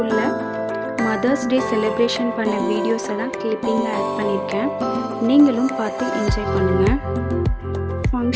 மதர்ஸ் டே செலிப்ரேஷன் பண்ண வீடியோஸை தான் கிளிப்பிங்காக ஆட் பண்ணியிருக்கேன். நீங்களும் பார்த்து என்ஜாய் பண்ணுங்கள்.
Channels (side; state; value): both; identical; correlation 1.00